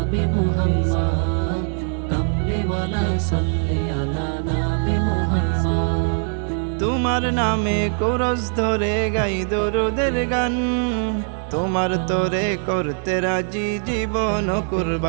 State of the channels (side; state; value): left; silent; 55 dB below the other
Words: মুহাম্মদ, কমলিওয়ালা সাল্লি আলা নবী মুহাম্মদ। তোমার নামে কোরস ধরে গাই দরুদের গান, তোমার তোরে করতে রাজি জীবন